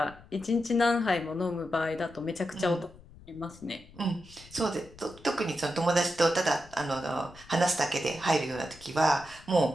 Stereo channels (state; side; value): noise; left; rumble, 22 dB below the sound